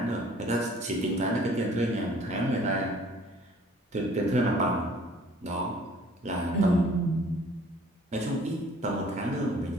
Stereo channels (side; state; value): both; normal; correlation 0.54